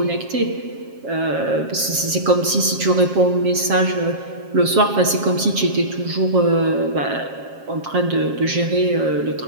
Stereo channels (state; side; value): late; left; 7.4 ms